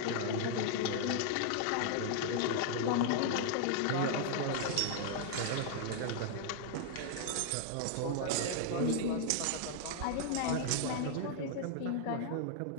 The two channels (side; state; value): both; different; correlation 0.00